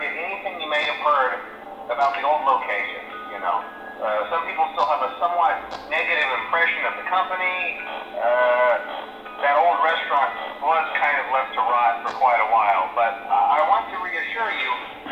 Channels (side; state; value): both; identical; correlation 1.00